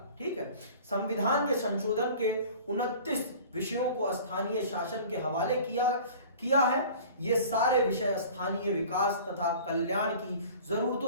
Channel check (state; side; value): inverted; both; correlation -0.44